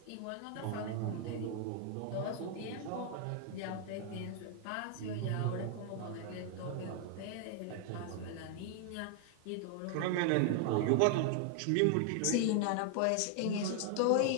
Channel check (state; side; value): different; both; correlation 0.00